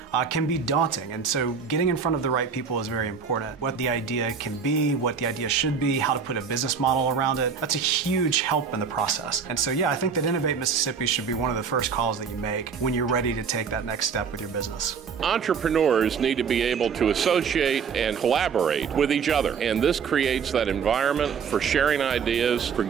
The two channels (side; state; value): left; quieter; 6.1 dB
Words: can be daunting, and so getting in front of the right people is very important. What the idea can be, what the idea should be, how to put a business model around it, that's a huge help in the process. And so yeah, I think that Innovate Mississippi should be one of the first calls that you make when you're ready to take that next step with your business. Entrepreneurs need to be able to associate and collaborate with each other, and this creates that environment for sharing ideas, for